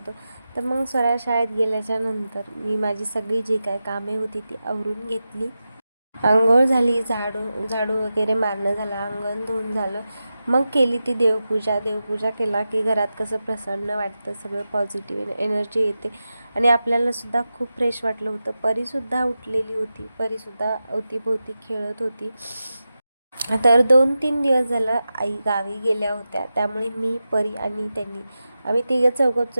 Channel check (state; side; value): inverted; both; correlation -0.92